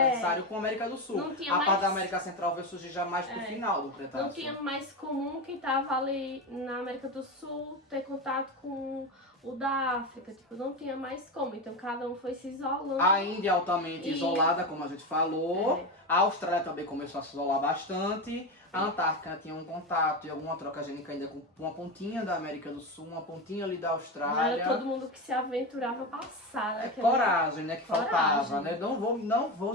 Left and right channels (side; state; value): both; normal; correlation 0.18